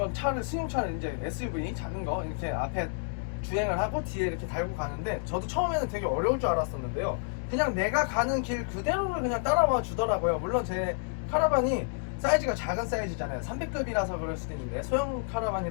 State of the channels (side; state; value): right; silent; digital silence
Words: 승용차를 이제 SUV 작은 거 이렇게 앞에 주행을 하고 뒤에 이렇게 달고 가는데, 저도 처음에는 되게 어려울 줄 알았었는데요. 그냥 내가 가는 길 그대로를 그냥 따라와 주더라고요. 물론 제 카라반이 사이즈가 작은 사이즈잖아요. 300급이라서 그럴 수도 있는데, 소형